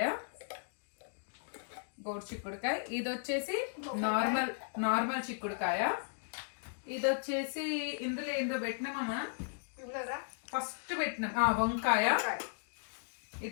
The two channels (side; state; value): right; silent; digital silence